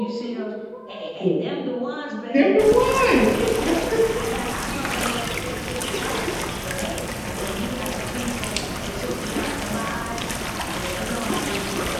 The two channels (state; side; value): identical; both; correlation 1.00